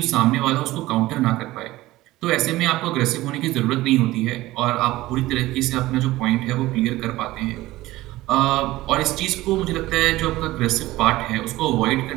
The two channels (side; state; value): left; quieter; 17.6 dB